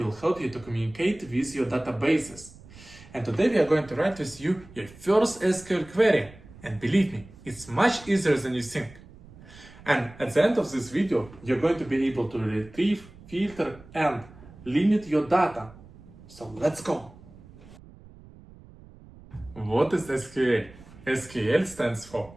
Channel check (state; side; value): noise; right; rumble, 21 dB below the sound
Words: help you to communicate with your databases. And today we are going to write with you your first SQL query. And believe me, it's much easier than you think. And at the end of this video, you're going to be able to retrieve, filter, and limit your data. So let's go. What is SQL? SQL stands for